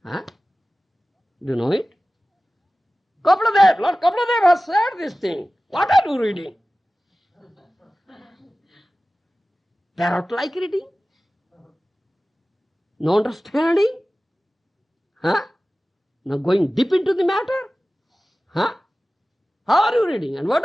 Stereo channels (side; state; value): both; normal; correlation 0.96